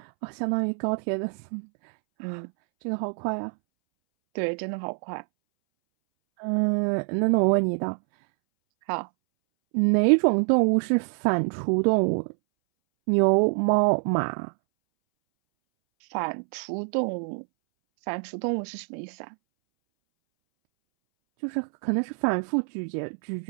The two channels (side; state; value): left; silent; 61 dB below the other